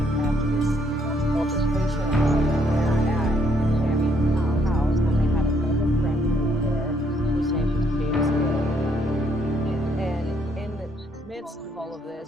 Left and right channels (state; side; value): normal; both; correlation 0.70